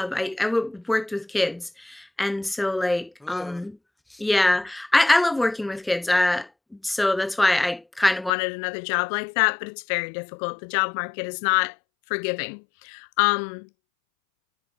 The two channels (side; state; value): right; drops out; at 8.3 s